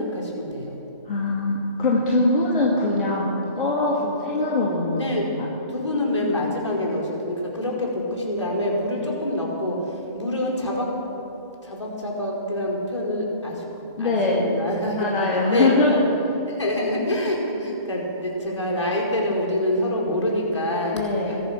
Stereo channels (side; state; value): both; inverted; correlation -0.42